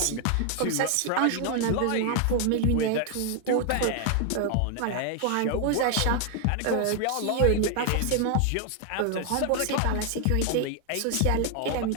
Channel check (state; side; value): different; both; correlation 0.00